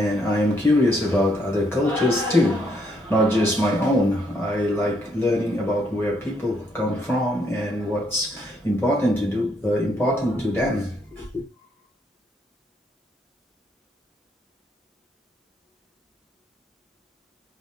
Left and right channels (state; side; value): normal; both; correlation 0.72